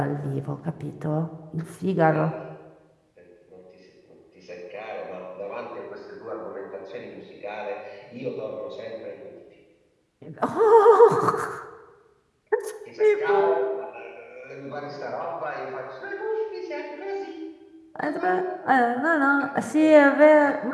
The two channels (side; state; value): both; identical; correlation 1.00